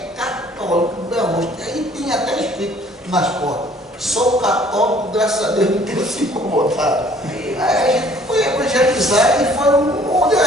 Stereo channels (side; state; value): both; normal; correlation 0.57